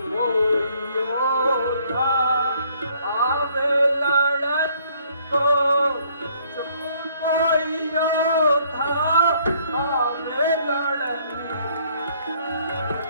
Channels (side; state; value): both; inverted; correlation -0.63